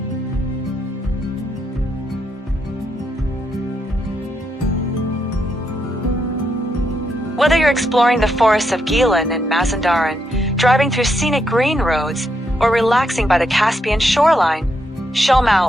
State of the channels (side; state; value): both; normal; correlation 0.80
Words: Whether you're exploring the forests of Gilan and Mazandaran, driving through scenic green roads, or relaxing by the Caspian shoreline, Shomal